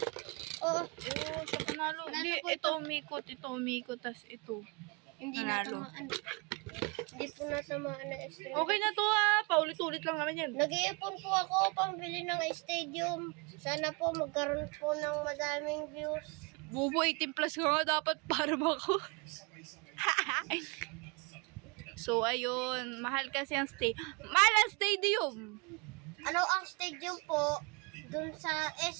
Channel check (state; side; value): quieter; left; 30.6 dB